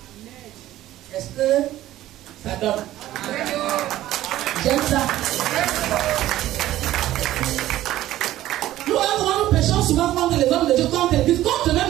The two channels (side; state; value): left; quieter; 14.3 dB